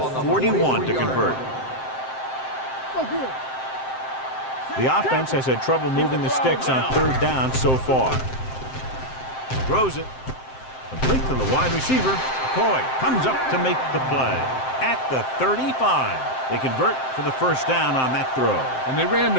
41 to convert. The offense has had trouble moving the sticks on third down so far. Throws it. Complete to the wide receiver. McCoy comes up to make the play at the 35. They convert for the first down on that throw. And they ran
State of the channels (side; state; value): right; late; 7.7 ms